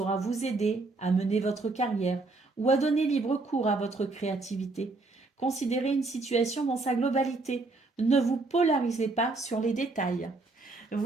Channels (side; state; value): left; quieter; 3.4 dB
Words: vous aider à mener votre carrière ou à donner libre cours à votre créativité. Considérez une situation dans sa globalité. Ne vous polarisez pas sur les détails.